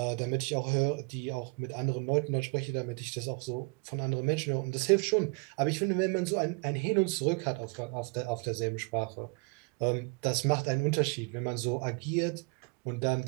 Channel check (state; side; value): quieter; left; 34.4 dB